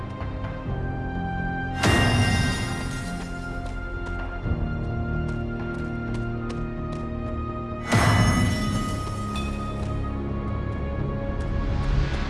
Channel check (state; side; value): identical; both; correlation 1.00